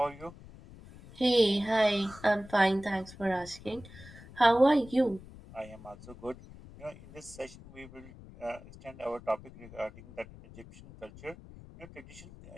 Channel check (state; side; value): noise; left; rumble, 18 dB below the sound